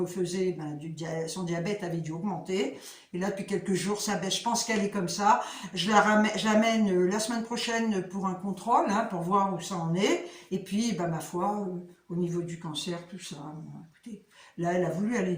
son diabète avait dû augmenter. Et là, depuis quelques jours, ça baisse. Je pense qu'elle est comme ça. Je l'amène la semaine prochaine pour un contrôle, hein, pour voir où ça en est. Et puis, ma foi, au niveau du cancer, tout ça, écoutez. Là, elle a voulu aller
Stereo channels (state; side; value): identical; both; correlation 1.00